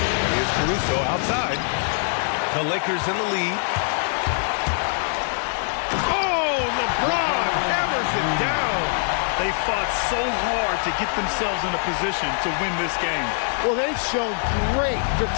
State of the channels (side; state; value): right; silent; digital silence